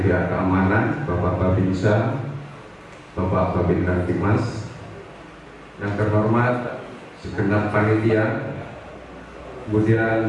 pihak keamanan Bapak Babinsa, Bapak Babin Kamtibmas. Yang terhormat segenap panitia.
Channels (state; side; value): identical; both; correlation 1.00